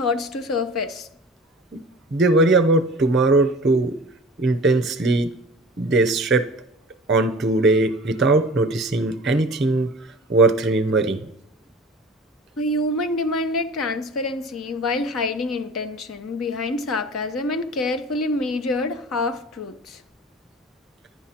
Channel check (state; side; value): normal; both; correlation 0.41